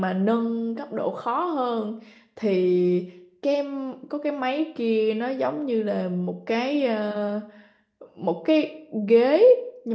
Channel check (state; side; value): identical; both; correlation 1.00